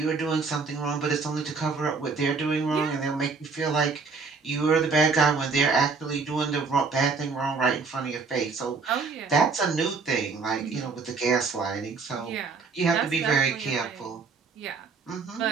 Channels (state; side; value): quieter; left; 4.7 dB